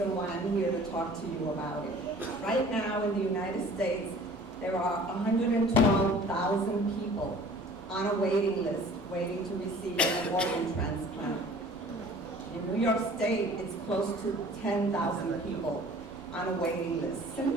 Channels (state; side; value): normal; both; correlation 0.48